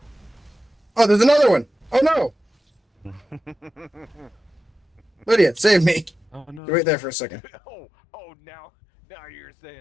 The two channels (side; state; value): right; drops out; at 6.6 s